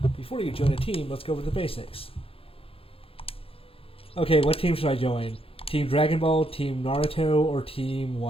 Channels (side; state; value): right; late; 0.27 ms